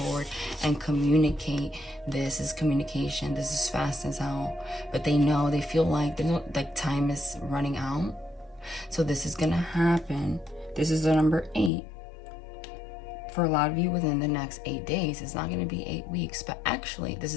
and communicate. This is communication. This is fast as hell. But they know, they feel like time is running out. So this is going to happen. This is the number 8. For a lot of you within the next 8 days. It's not going to be 8 weeks. But actually, this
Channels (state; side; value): drops out; right; at 11.7 s